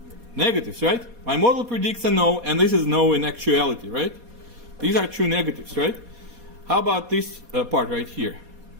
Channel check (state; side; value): late; left; 4.2 ms